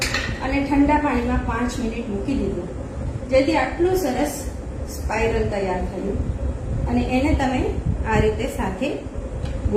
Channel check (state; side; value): identical; both; correlation 1.00